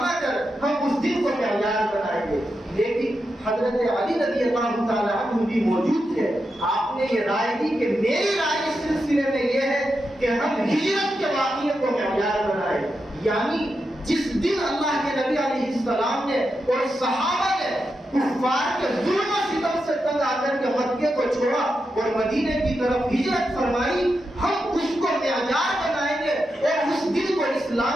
کر ہم اس دن کو معیار بنائیں گے۔ لیکن حضرت علی رضی اللہ تعالیٰ عنہ بھی موجود تھے، آپ نے یہ رائے دی کہ میری رائے اس سلسلے میں یہ ہے کہ ہم ہجرت کے واقعے کو معیار بنائیں، یعنی جس دن اللہ کے نبی علیہ السلام نے اور صحابہ نے کفار کے ظلم و ستم سے تنگ آ کر کے مکے کو چھوڑا اور مدینے کی طرف ہجرت فرمائی، ہم اس کو معیار بنائیں گے اور اس دن کو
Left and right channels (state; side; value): normal; both; correlation 0.87